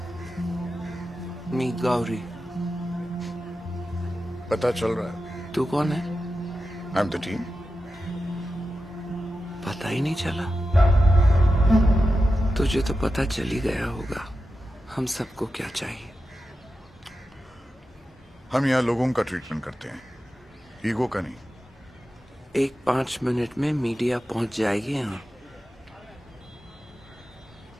मी गौरी। पता चल रहा है? तू कौन है? I am the team. पता ही नहीं चला। तुझे तो पता चल ही गया होगा हम सबको क्या चाहिए। हम यहाँ लोगों का ट्रीटमेंट करते हैं, ईगो का नहीं। एक 5 मिनट में मीडिया पहुंच जाएगी यहाँ।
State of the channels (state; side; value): normal; both; correlation 0.91